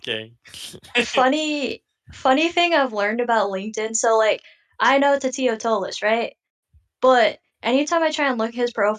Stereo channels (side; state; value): both; identical; correlation 1.00